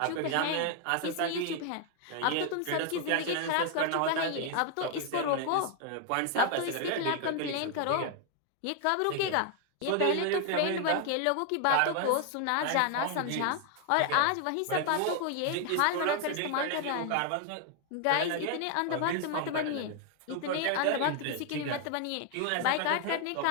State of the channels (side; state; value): both; different; correlation 0.00